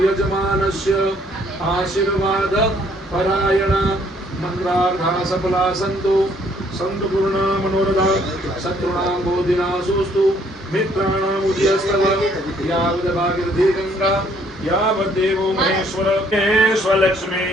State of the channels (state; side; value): normal; both; correlation 0.64